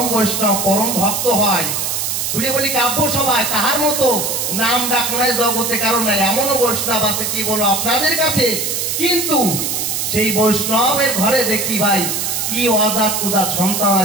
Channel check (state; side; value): noise; right; hiss, 1 dB below the sound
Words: পরম ভক্ত হয়। খুলে বলি কাব্য সভায় তাহার মতো নাম ডাক নাই জগতে কারণ নাই, এমনও বৈষ্ণব আছে কি বলো আপনাদের কাছে, কিন্তু সেই বৈষ্ণবের ঘরে দেখি ভাই কি অজাত কুজাত সন্তান